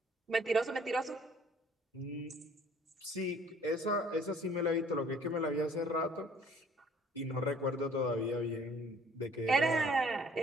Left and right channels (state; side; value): normal; both; correlation 0.56